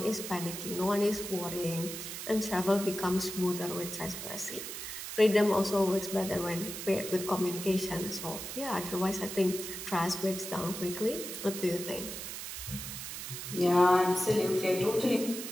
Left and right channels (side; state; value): right; noise; hiss, 7 dB below the sound